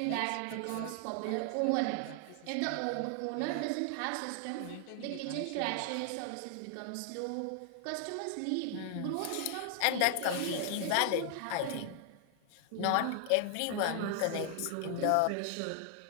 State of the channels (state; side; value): different; both; correlation 0.00